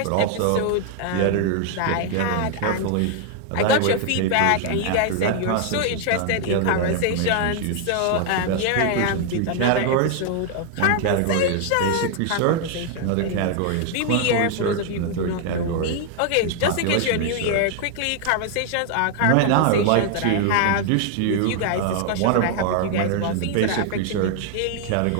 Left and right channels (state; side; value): different; both; correlation 0.00